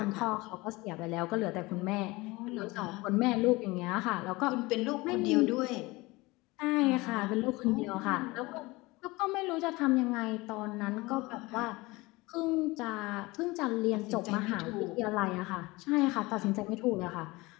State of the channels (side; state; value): right; quieter; 22.4 dB